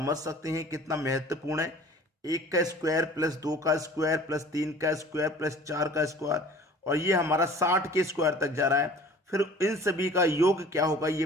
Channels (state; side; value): normal; both; correlation 0.47